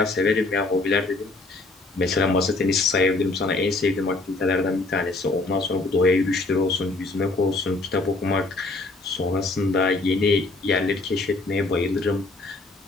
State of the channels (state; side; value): quieter; right; 3.2 dB